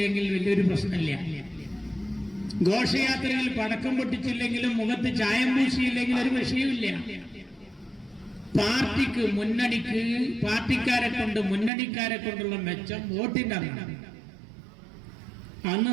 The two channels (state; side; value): drops out; left; at 11.7 s